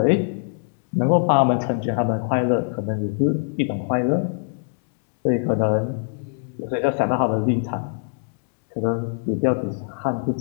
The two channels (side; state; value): right; silent; digital silence